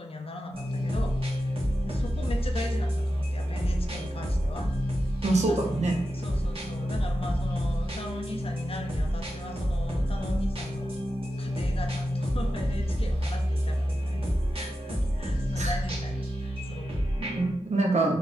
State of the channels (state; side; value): normal; both; correlation 0.90